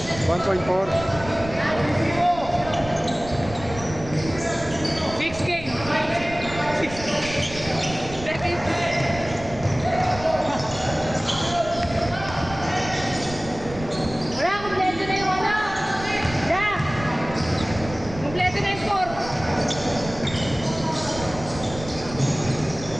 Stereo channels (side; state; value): right; noise; rumble, 13 dB below the sound